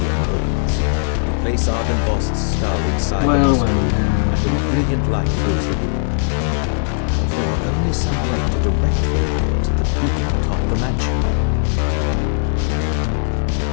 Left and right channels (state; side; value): silent; right; 64 dB below the other